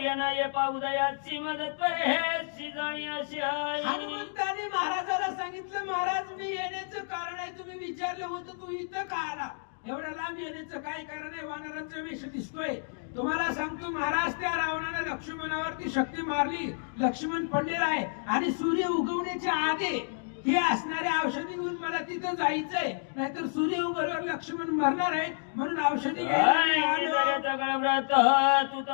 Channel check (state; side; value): silent; right; digital silence